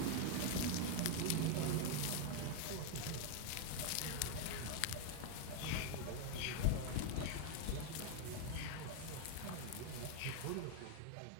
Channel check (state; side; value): different; both; correlation 0.01